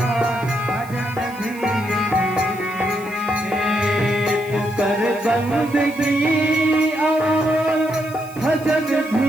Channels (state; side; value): noise; right; hiss, 21 dB below the sound